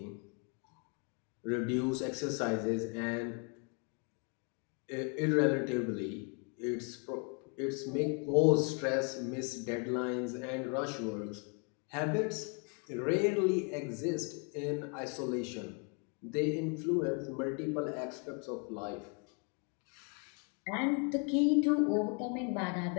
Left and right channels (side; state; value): right; quieter; 36.8 dB